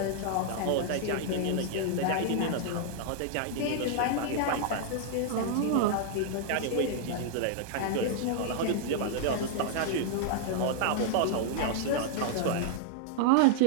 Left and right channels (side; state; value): both; different; correlation -0.01